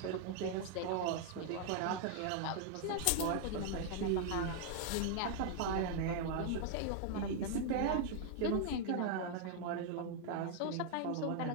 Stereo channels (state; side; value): different; both; correlation 0.00